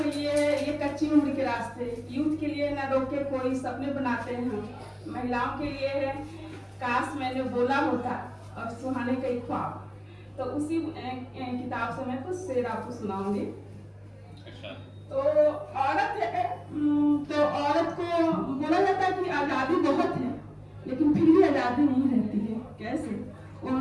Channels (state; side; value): identical; both; correlation 1.00